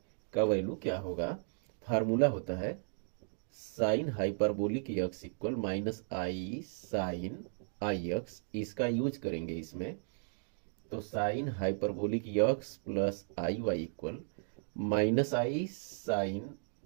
का वैल्यू क्या होगा? फार्मूला होता है sine hyperbolic x equal minus i sine i x, इसका यूज करेंगे इसमें, तो sine hyperbolic x plus i y equal minus i sine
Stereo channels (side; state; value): left; silent; digital silence